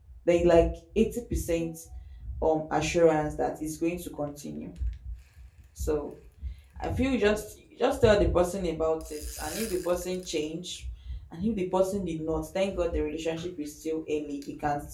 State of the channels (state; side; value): identical; both; correlation 1.00